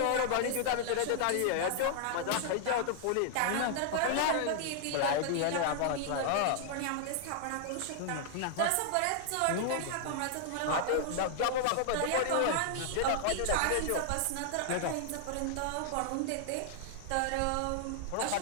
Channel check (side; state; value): both; different; correlation -0.01